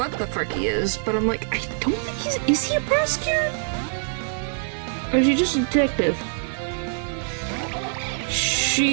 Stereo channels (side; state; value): left; silent; 63 dB below the other